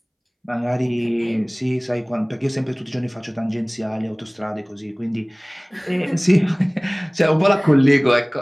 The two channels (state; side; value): identical; both; correlation 1.00